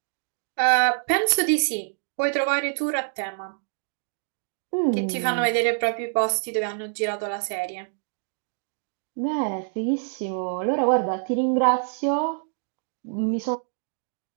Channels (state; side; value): silent; left; 61 dB below the other